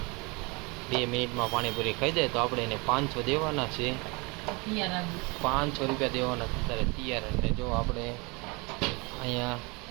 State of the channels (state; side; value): quieter; left; 28.0 dB